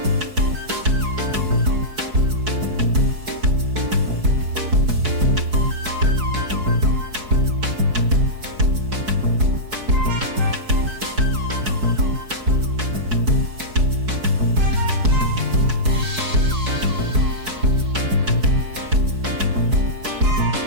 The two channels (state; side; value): late; left; 4.7 ms